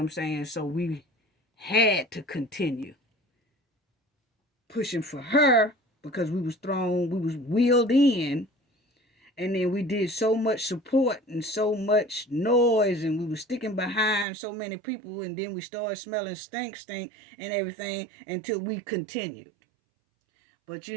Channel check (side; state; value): left; drops out; at 14.2 s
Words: saying? So we had to continue pushing for her because we was wheeled in, and then we did so much support and so much noise, and we were sticking behind so many people, and then we started smelling stink and everything until we continued. But